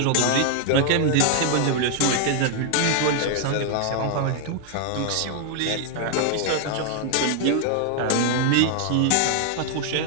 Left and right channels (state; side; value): different; both; correlation 0.00